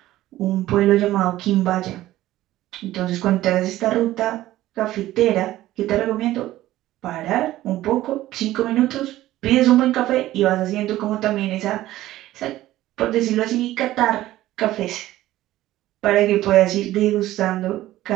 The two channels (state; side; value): quieter; left; 15.1 dB